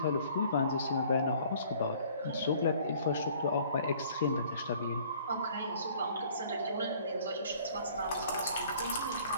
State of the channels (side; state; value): both; inverted; correlation -0.55